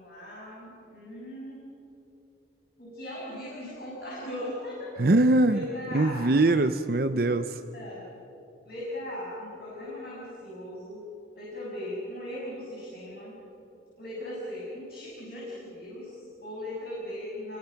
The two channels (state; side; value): normal; both; correlation 0.53